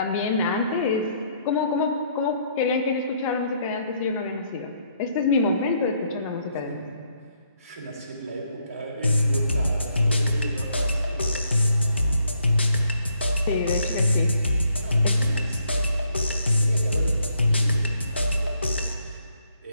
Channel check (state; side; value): inverted; both; correlation -0.72